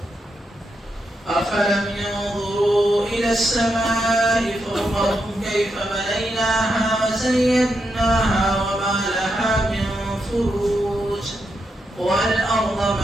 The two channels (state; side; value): normal; both; correlation 0.83